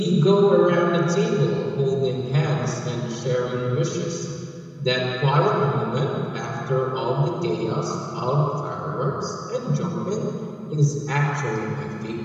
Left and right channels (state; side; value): identical; both; correlation 1.00